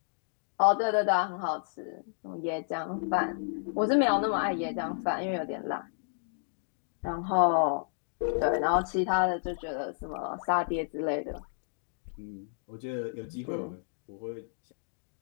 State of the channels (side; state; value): right; silent; digital silence